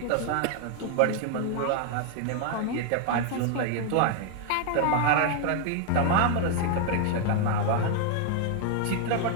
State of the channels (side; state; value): both; different; correlation 0.00